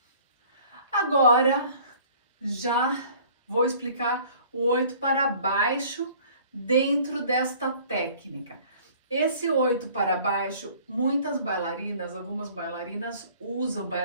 Agora, já vou explicar o 8 para baixo dentro desta técnica. Esse 8 para baixo, muitas bailarinas, algumas bailarinas usam,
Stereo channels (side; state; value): both; inverted; correlation -0.52